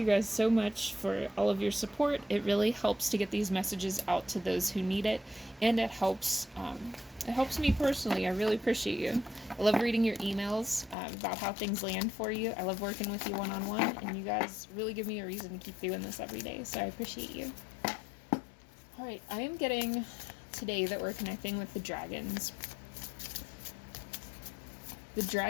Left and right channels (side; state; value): right; drops out; at 11.0 s